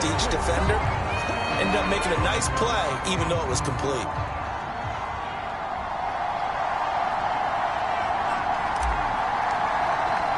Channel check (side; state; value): both; identical; correlation 1.00